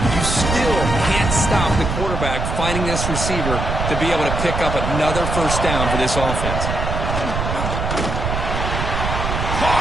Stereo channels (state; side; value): noise; right; rumble, 2 dB below the sound